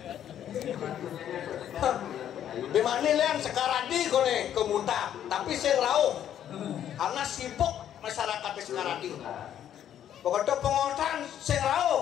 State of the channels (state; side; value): quieter; right; 10.4 dB